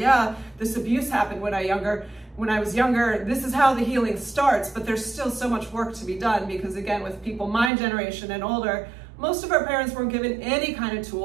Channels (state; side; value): drops out; left; at 7.7 s